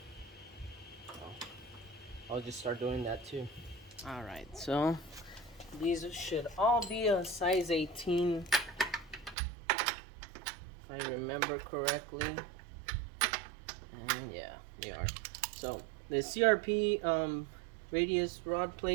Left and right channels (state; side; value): drops out; left; at 9.3 s